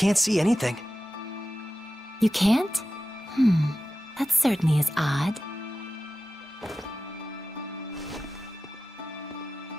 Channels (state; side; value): normal; both; correlation 0.94